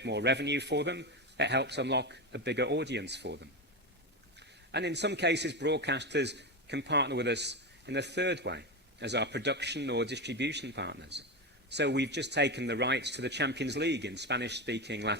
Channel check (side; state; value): both; normal; correlation 0.17